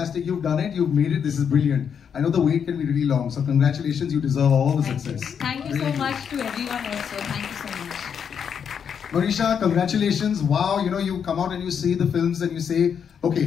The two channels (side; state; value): right; quieter; 7.4 dB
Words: You've done it. You've made it. This is brilliant. I know the wait can be really long, so congratulations. You deserve all the success. Thank you so much to everyone also. Thank you so much. Monisha, congratulations. Wow, you know, you come out and you see the films and you say,